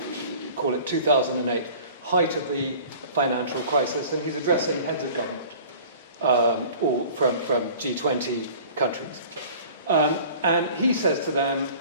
call it 2008, height of the financial crisis, and he's addressing heads of government, or from G20 countries. And he says to them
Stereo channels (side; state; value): both; inverted; correlation -0.46